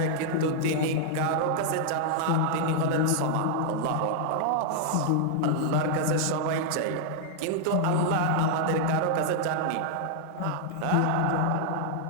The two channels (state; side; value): different; both; correlation 0.00